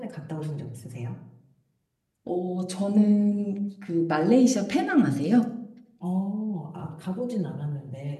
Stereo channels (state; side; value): identical; both; correlation 1.00